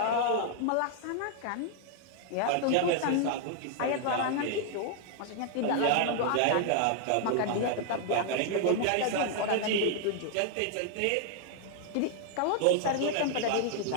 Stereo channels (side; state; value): both; different; correlation 0.00